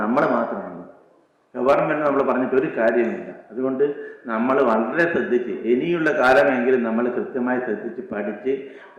നമ്മൾ മാത്രമാണ്. ഗവൺമെൻറ് നമ്മൾ പറഞ്ഞിട്ട് ഒരു കാര്യമില്ല. അതുകൊണ്ട് നമ്മൾ വളരെ ശ്രദ്ധിച്ച് ഇനിയുള്ള കാലമെങ്കിലും നമ്മൾ കൃത്യമായി ശ്രദ്ധിച്ച് പഠിച്ച്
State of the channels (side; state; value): both; identical; correlation 1.00